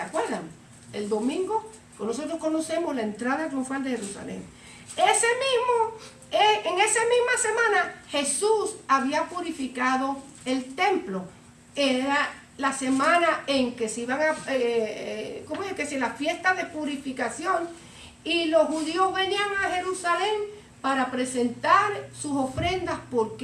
acuerdan? El domingo nosotros conocemos la entrada triunfal de Jerusalén. En esa misma semana Jesús había purificado el templo. Era la semana en que se iban a, ¿cómo es que si la fiesta de purificación? Y los judíos venían a Jerusalén para presentar sus ofrendas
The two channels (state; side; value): identical; both; correlation 1.00